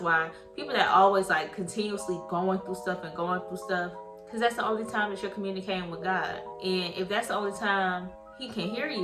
why people that always like continuously going through stuff, because that's the only time that you're communicating with God. And if that's the only time he can hear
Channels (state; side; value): identical; both; correlation 1.00